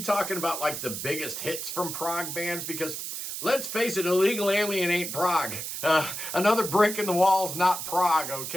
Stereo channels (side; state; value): right; noise; hiss, 6 dB below the sound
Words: about like the biggest hits from prog bands because let's face it, Illegal Alien ain't prog. Another brick in the wall's not prog,